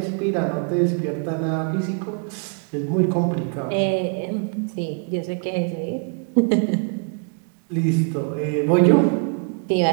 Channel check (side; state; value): left; quieter; 38.4 dB